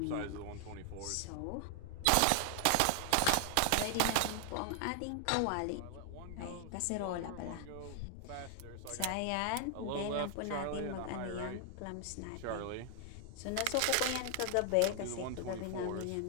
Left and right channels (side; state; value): both; different; correlation 0.00